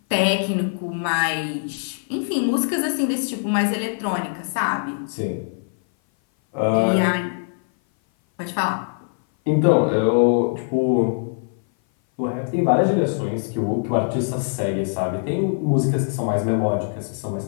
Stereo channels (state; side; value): silent; right; 58 dB below the other